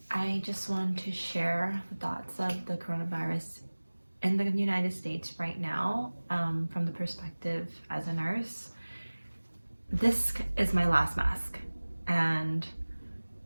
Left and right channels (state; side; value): inverted; both; correlation -1.00